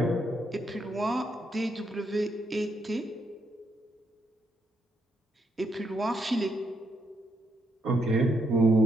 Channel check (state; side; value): normal; both; correlation 0.77